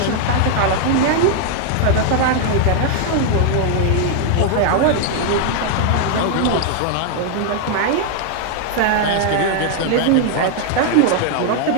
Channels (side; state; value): both; different; correlation 0.00